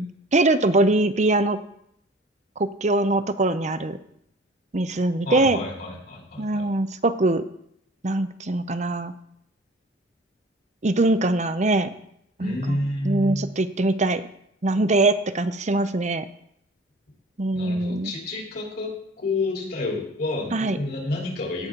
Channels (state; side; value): normal; both; correlation 0.45